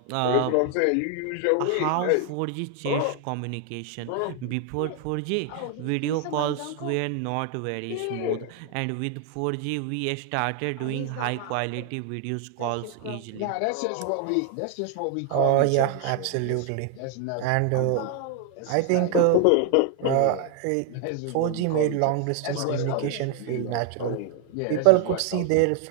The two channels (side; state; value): both; different; correlation 0.00